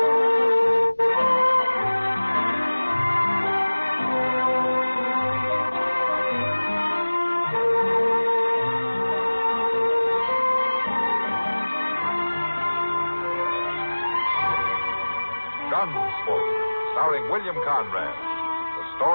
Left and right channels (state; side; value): inverted; both; correlation -1.00